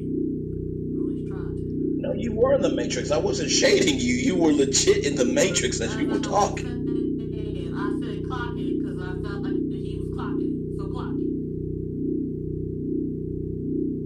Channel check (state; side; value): identical; both; correlation 1.00